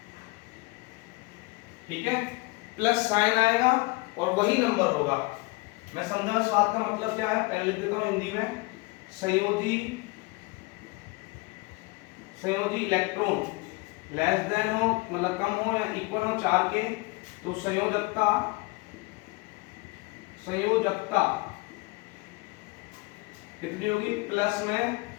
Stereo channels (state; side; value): quieter; right; 25.2 dB